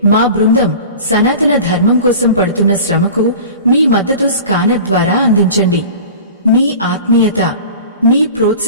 మా బృందం సనాతన ధర్మం కోసం పడుతున్న శ్రమకు మీ మద్దతు స్కానర్ ద్వారా అందించండి. మీ ఆత్మీయత, మీ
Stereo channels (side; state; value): both; inverted; correlation -0.38